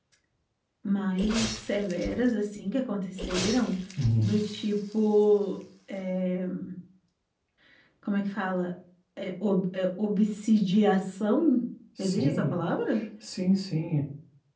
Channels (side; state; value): both; identical; correlation 1.00